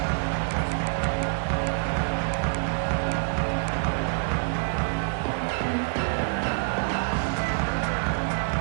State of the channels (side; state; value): left; silent; 61 dB below the other